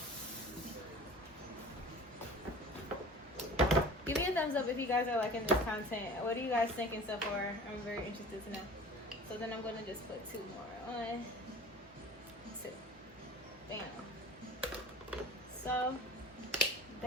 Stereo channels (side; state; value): both; normal; correlation 0.42